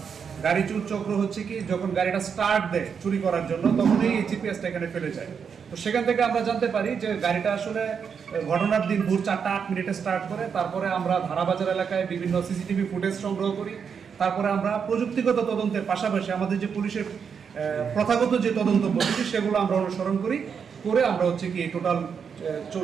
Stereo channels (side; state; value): left; quieter; 6.7 dB